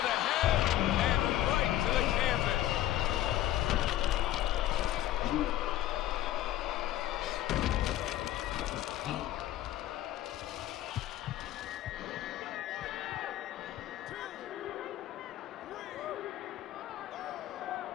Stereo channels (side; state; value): right; quieter; 13.7 dB